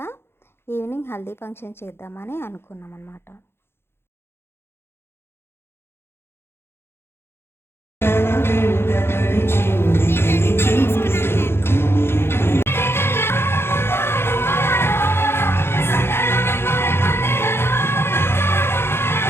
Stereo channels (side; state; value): right; late; 0.11 ms